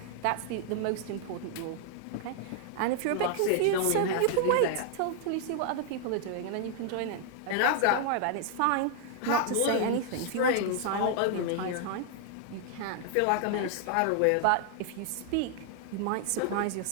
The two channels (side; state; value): both; different; correlation 0.00